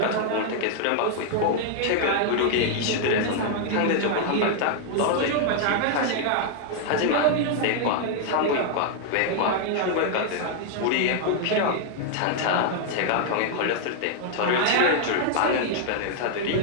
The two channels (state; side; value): different; both; correlation 0.00